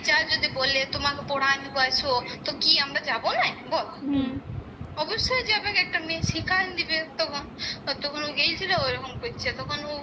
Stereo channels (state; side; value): identical; both; correlation 1.00